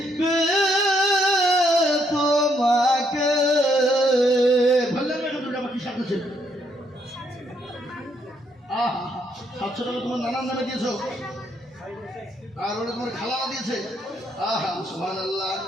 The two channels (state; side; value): normal; both; correlation 0.72